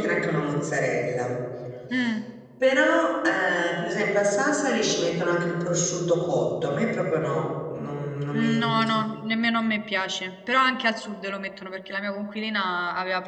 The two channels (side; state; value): both; identical; correlation 1.00